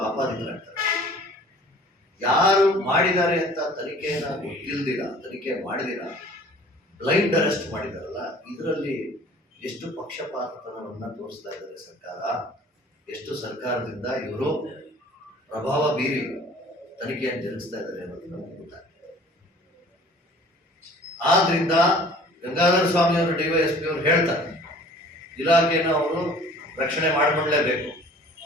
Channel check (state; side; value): normal; both; correlation 0.49